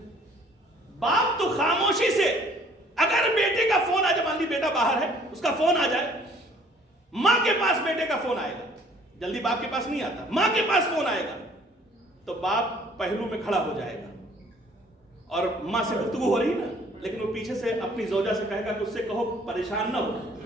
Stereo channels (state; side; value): normal; both; correlation 0.57